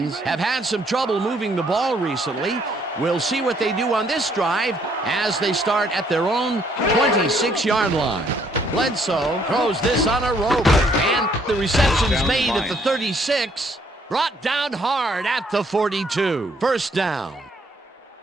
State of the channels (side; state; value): both; normal; correlation 0.67